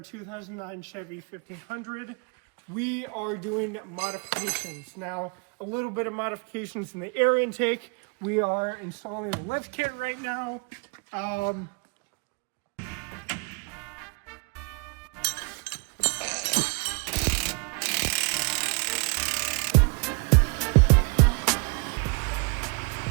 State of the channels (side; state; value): left; quieter; 33.6 dB